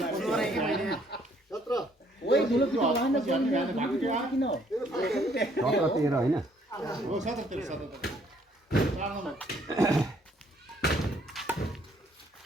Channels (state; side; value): normal; both; correlation 0.65